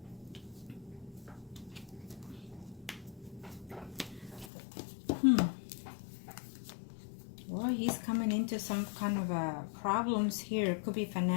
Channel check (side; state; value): right; drops out; at 4.5 s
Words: Well, he's coming into some kind of problems here. It could be